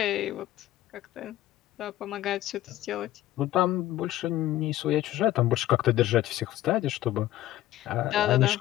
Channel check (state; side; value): quieter; right; 14.6 dB